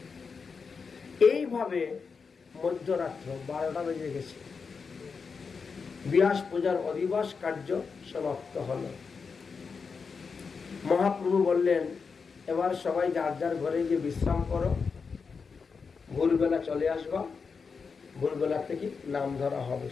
এইভাবে মধ্যরাত্র 12টা বেজে গেছে। ব্যাস পূজার অধিবাস কার্য সমাপ্ত হল। মহাপ্রভু বললেন এবার সবাই যার যার ঘরে গিয়ে বিশ্রাম করো, ভোরবেলা চলে আসবা। ভোরবেলা থেকে নাম ধরা হবে,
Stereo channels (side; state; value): right; quieter; 5.3 dB